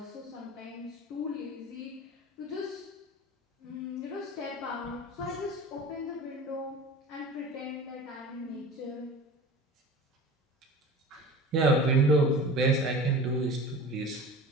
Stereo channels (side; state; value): both; normal; correlation 0.37